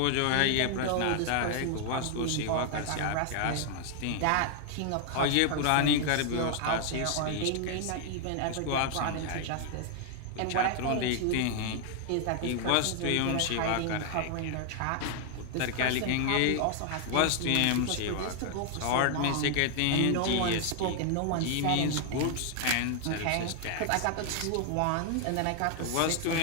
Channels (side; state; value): both; different; correlation 0.00